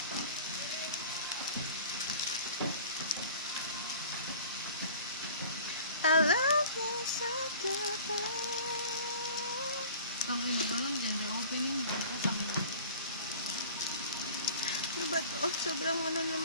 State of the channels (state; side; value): inverted; both; correlation -0.43